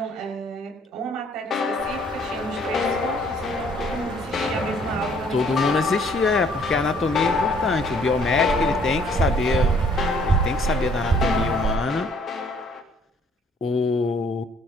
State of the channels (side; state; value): both; normal; correlation 0.61